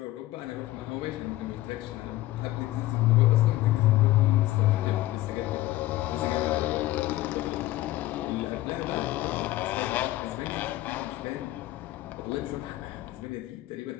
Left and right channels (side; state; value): right; quieter; 16.4 dB